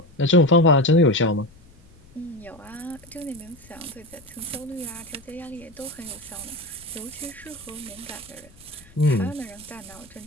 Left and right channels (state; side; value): noise; left; rumble, 25 dB below the sound